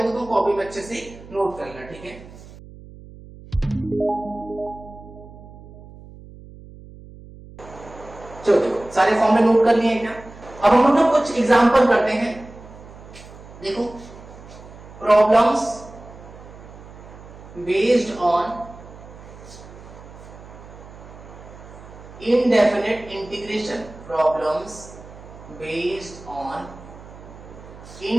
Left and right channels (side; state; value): right; noise; hum, 18 dB below the sound